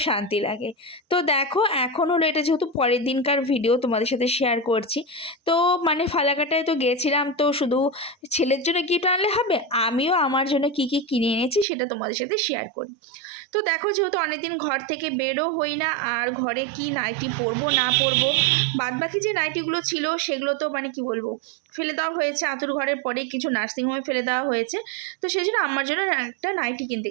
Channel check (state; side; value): drops out; left; at 11.7 s